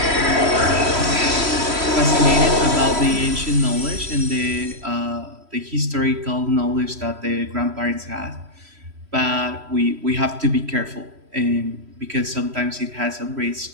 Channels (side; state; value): left; late; 3.1 ms